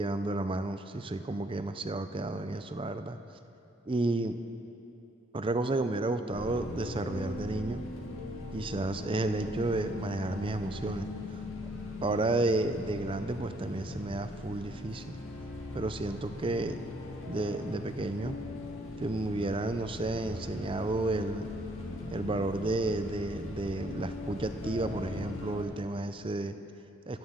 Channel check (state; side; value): normal; both; correlation 0.67